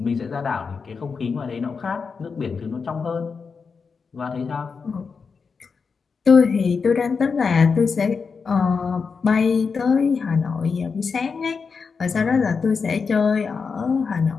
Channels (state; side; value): quieter; right; 5.3 dB